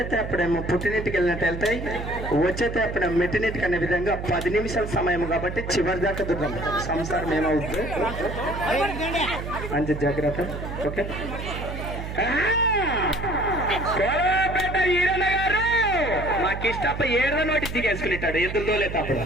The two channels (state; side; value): noise; right; hum, 7 dB below the sound